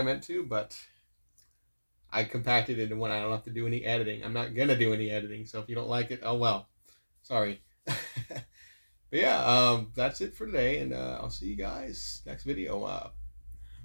meant to, but I compacted it into one. I don't have to do any editing. I'm not going to do any editing, so if you don't like it, oh well. Sorry. But yeah, that's it for today, and I'll see you guys next video, a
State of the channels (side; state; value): both; inverted; correlation -1.00